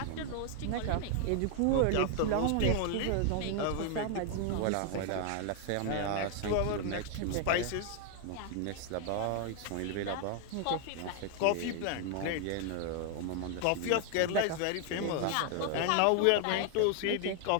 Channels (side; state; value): both; different; correlation 0.00